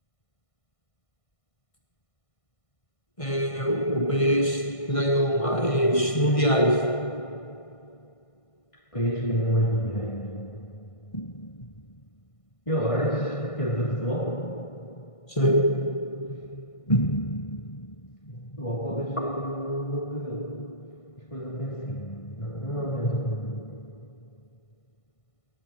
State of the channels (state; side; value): late; right; 1.5 ms